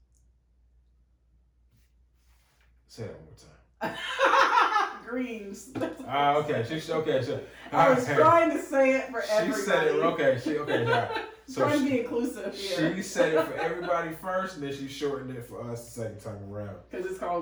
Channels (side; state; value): both; identical; correlation 1.00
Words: Say that one more time. Greens. Okay. Sure. I was trying to say it for everybody. She said it. Okay. Right. So trying to be inclusive here. She said it for everybody first, and then she shortened it for us the second time around. Because it's